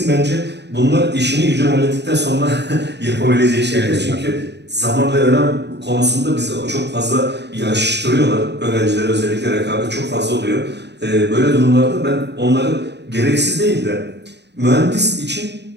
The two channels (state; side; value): late; left; 0.50 ms